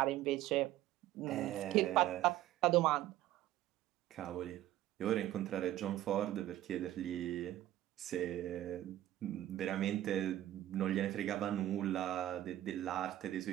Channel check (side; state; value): left; quieter; 13.8 dB